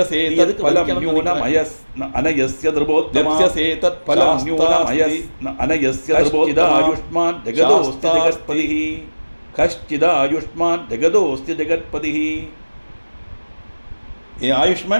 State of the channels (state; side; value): inverted; both; correlation -1.00